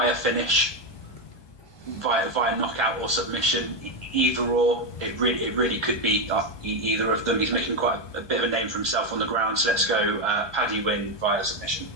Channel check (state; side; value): late; right; 1.2 ms